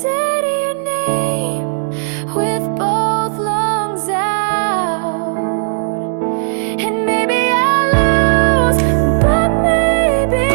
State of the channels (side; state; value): left; silent; digital silence